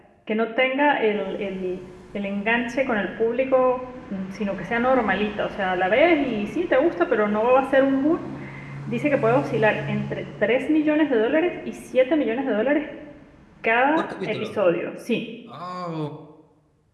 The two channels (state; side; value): identical; both; correlation 1.00